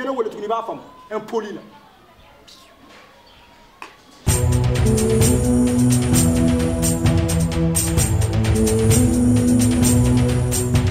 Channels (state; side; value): identical; both; correlation 1.00